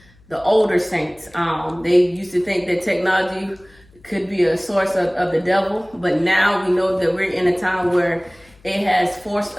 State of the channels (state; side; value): noise; left; hum, 29 dB below the sound